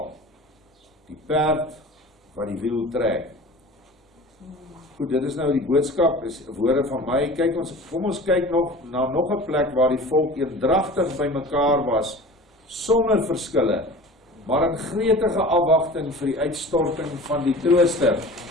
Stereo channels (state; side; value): normal; both; correlation 0.39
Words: Die perd wat die wiel trek. Goed, dit is nou die boodskap, is woorde van my. Kom ons kyk na nog 'n plek waar die volk eendragtig by mekaar was, sonder verskille, maar in gretige afwagting vir die uitstorting van die trooster.